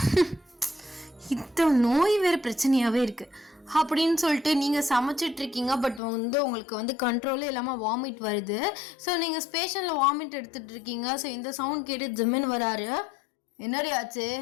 இந்த நோய் வேற பிரச்சனையாவே இருக்கு அப்படின்னு சொல்லிட்டு நீங்க சமைச்சிட்டு இருக்கீங்க. பட் உங்களுக்கு கண்ட்ரோலே இல்லாம வாமிட் வருது. ஸோ நீங்க ஸ்பேஷன்ல வாமிட் எடுத்துட்டு இருக்கீங்க. ஸோ இந்த சவுண்ட் கேட்டு ஜிம்மின் வராரு. என்னடி ஆச்சு?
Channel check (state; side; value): drops out; right; at 6.0 s